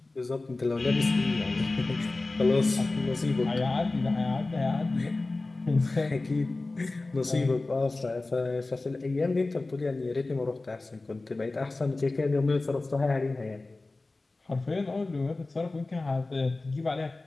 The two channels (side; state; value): right; quieter; 3.2 dB